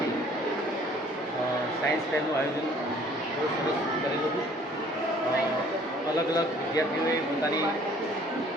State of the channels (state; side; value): normal; both; correlation 0.56